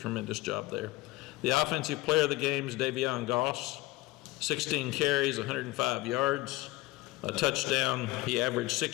job there. The offensive player of the game is Davion Goss, 16 carries, 105 yards. A touchdown. He averaged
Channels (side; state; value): right; quieter; 19.1 dB